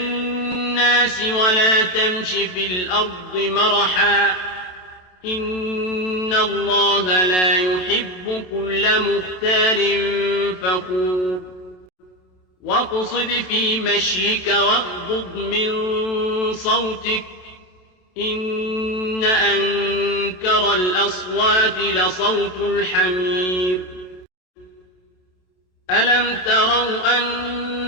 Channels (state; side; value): late; right; 27 ms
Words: ولا تمش في الأرض مرحا إن الله لا يحب كل مختال فخور واقصد في مشيك واغضض من صوتك إن أنكر الأصوات لصوت الحمير ألم تروا